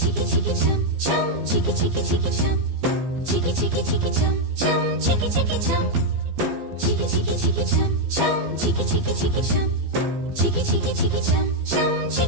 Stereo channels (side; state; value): left; late; 15 ms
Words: chicky chicky chum chum, chicky chicky chicky chum, chicky chicky chicky chum chum, chicky chicky chum, chicky chicky chicky chum chum, chicky chicky chicky chum, chicky chicky chicky chum chum,